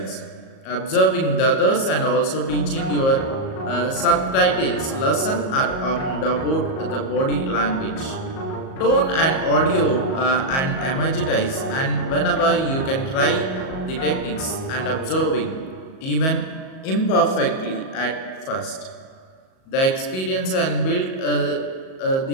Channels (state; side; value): late; right; 38 ms